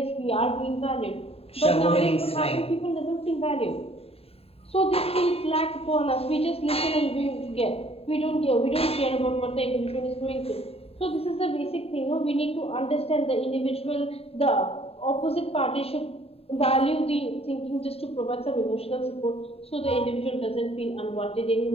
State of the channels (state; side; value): late; right; 0.28 ms